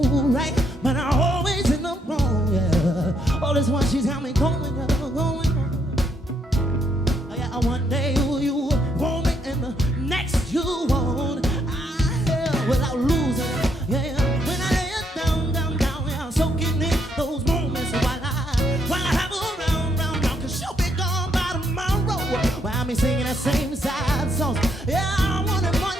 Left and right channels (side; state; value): both; normal; correlation 0.74